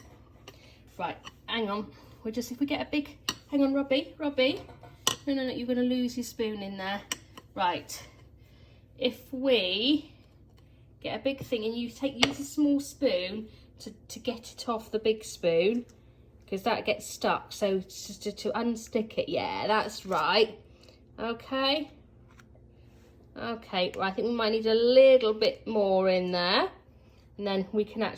Right, hang on. If we get a big, hang on, Robbie. No, you're going to lose your spoon in there. Right, if we get a big thing and you use a small spoon to get it off the big spoon, because that gets stuck. So just to unstick it, yeah, that's right. Okay. Okay, well, I think we might need a little bit more in there, and then we can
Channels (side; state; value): both; identical; correlation 1.00